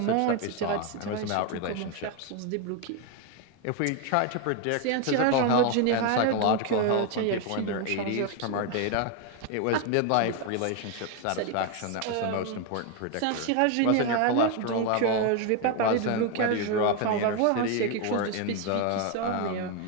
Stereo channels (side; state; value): both; different; correlation 0.01